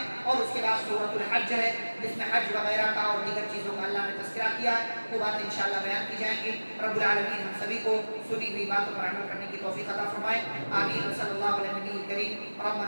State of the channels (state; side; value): inverted; both; correlation -1.00